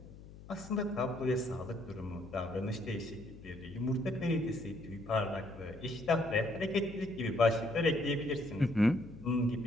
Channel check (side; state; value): left; noise; hum, 17 dB below the sound